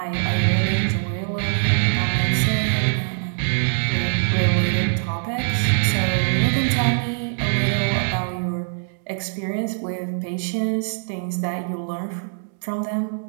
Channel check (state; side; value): silent; left; digital silence